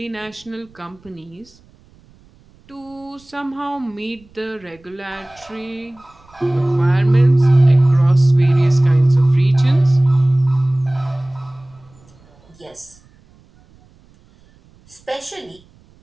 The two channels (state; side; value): noise; right; rumble, 29 dB below the sound